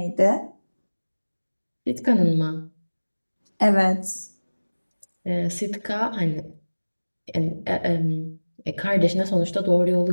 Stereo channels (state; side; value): inverted; both; correlation -1.00